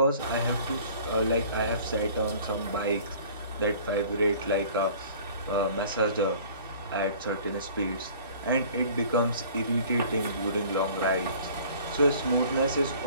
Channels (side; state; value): both; inverted; correlation -0.49